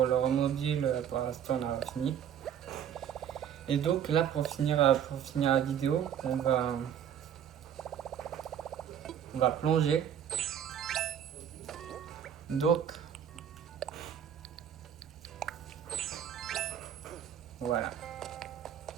le remodule, pour l'instant on a fini. Et donc là pour finir la vidéo, on va plonger. Donc voilà.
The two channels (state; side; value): quieter; left; 9.1 dB